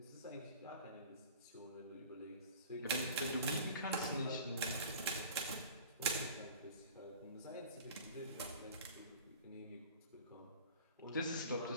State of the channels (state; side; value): inverted; both; correlation -0.42